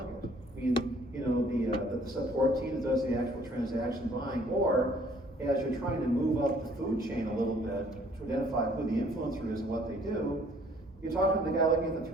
I mean, you know, the support team that does the actual transaction buying, or as you're trying to move up the food chain a little bit to identify who the influencer is and what they do, you're talking to the guy looking at the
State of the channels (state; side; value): normal; both; correlation 0.59